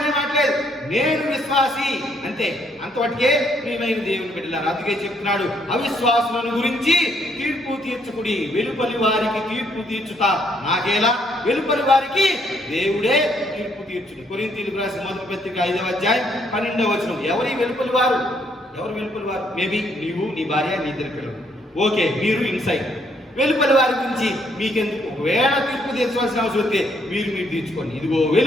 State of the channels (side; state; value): both; normal; correlation 0.70